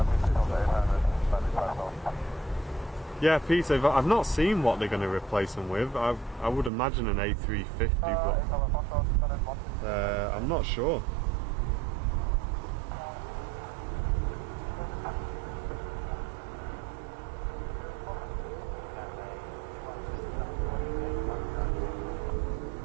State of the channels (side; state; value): left; drops out; at 6.7 s